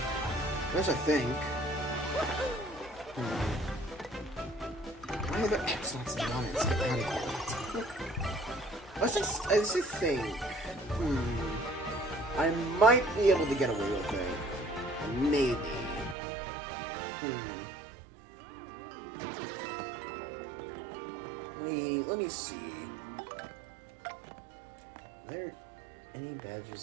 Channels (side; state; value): left; drops out; at 16.2 s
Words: There's a thing. Why are there X-Naughts and non-X? I just think. I might be able to get away with it. Maybe. Let me see. Are there any